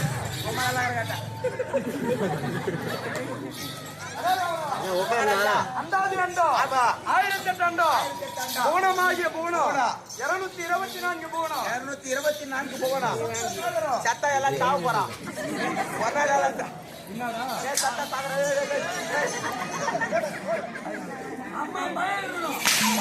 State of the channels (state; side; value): identical; both; correlation 1.00